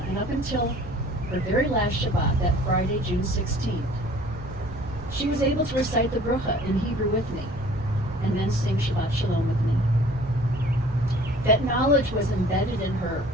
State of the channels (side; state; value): right; noise; rumble, 14 dB below the sound